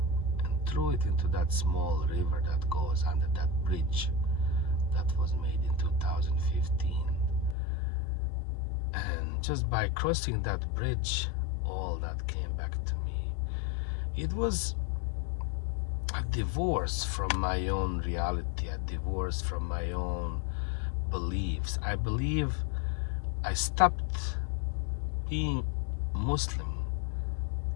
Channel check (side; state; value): right; drops out; at 7.6 s